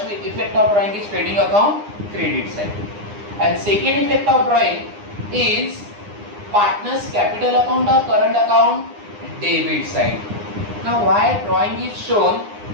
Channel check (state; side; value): late; left; 9.8 ms